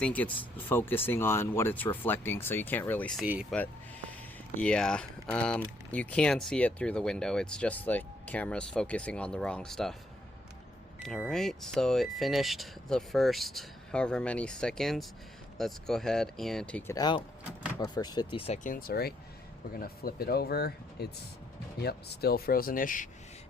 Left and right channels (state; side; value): normal; both; correlation 0.72